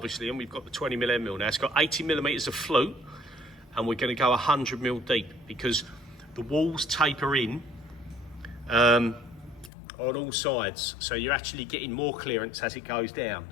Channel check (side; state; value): right; drops out; at 9.7 s